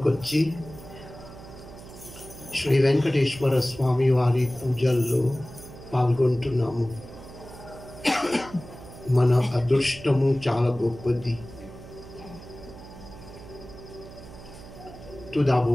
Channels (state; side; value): noise; right; hum, 16 dB below the sound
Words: శ్రీ వెంకటేశ్వర స్వామి వారి పూజల్లో పాల్గొంటున్నాము. మన అదృష్టము చాలా గొప్పది. Tout